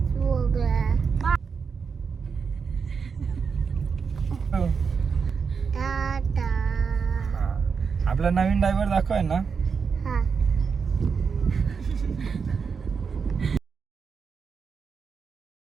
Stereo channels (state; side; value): quieter; left; 5.7 dB